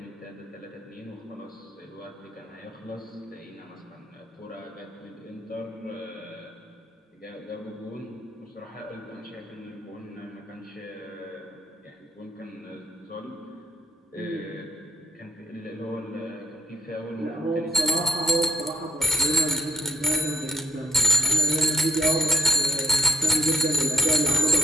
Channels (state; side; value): normal; both; correlation 0.68